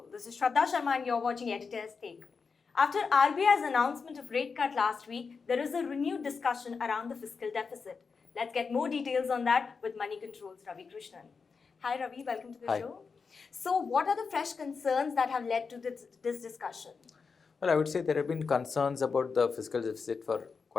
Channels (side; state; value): right; quieter; 5.2 dB